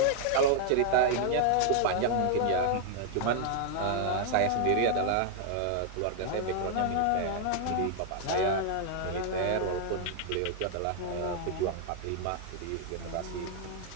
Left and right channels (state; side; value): different; both; correlation 0.00